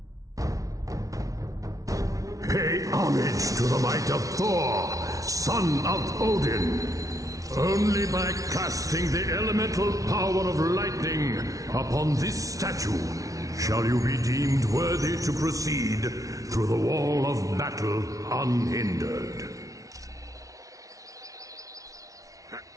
Pay homage to the might of Thor, son of Odin. Only by casting the elemental power of lightning upon this statue shall you be deemed worthy to proceed through the wall of battle unhindered.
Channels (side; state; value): left; late; 0.17 ms